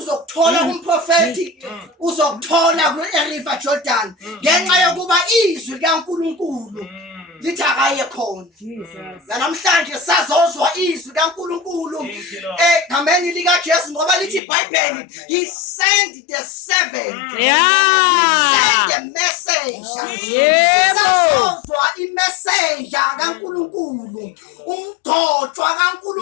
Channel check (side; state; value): right; drops out; at 14.4 s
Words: uzokuthola kumprofeti uzokuthola ku River Jordan ngenxa yokuba izwi likaNkulunkulu lithi akaye khona. Namhlanje sazozwa izwi kaNkulunkulu egameni lika Jesu ngoba lithi iBhayibheli he sent the servant. He sent the messenger. Sazozwa imessenger kaNkulunkulu umdotshwa